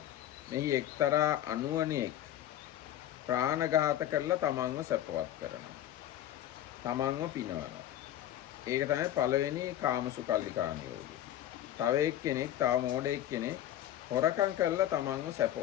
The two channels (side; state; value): right; quieter; 12.0 dB